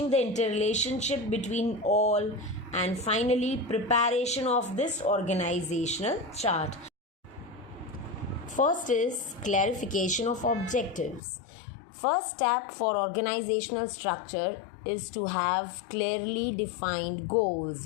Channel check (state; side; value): drops out; right; at 11.2 s